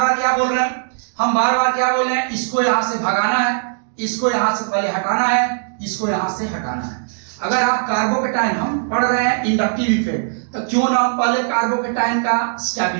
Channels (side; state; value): left; silent; digital silence